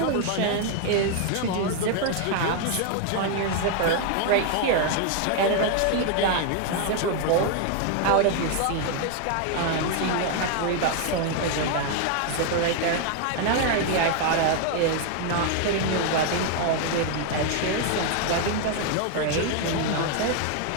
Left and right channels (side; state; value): both; different; correlation 0.00